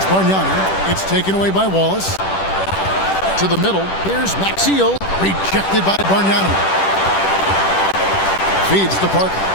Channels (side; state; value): right; late; 10 ms